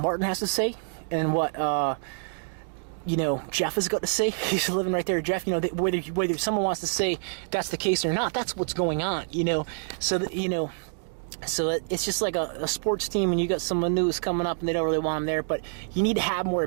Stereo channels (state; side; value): silent; left; digital silence